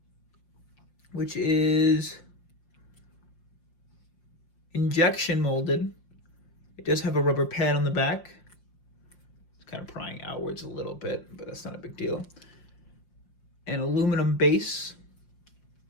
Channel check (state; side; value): late; right; 5.7 ms